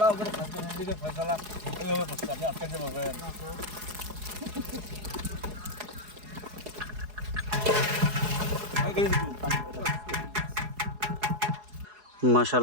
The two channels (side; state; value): left; late; 4.8 ms